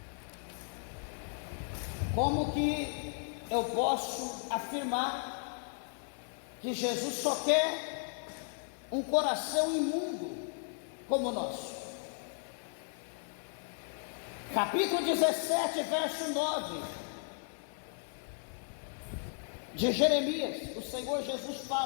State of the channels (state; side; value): silent; right; 54 dB below the other